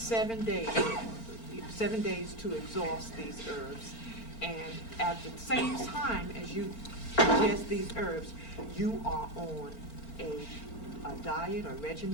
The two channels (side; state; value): right; late; 4.4 ms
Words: days to exhaust these herbs, and at the same time as you ingest these herbs, you are on a diet or